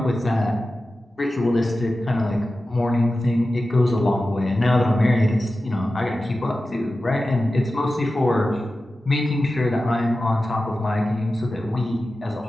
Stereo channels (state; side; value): normal; both; correlation 0.94